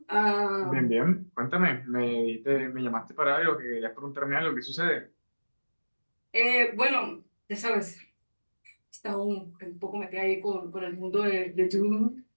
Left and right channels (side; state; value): both; inverted; correlation -1.00